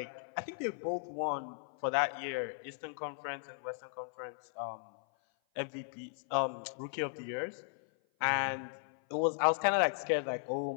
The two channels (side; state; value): right; silent; 54 dB below the other